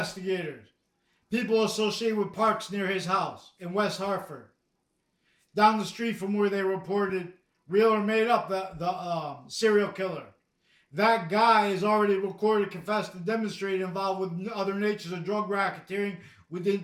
people associated with parks near his house in West Hartford, down the street from where they reported real or made up the serial killer. That guy is already recorded, confessed, and demonstrated involved with other natures of drug racketeering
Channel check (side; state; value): both; identical; correlation 1.00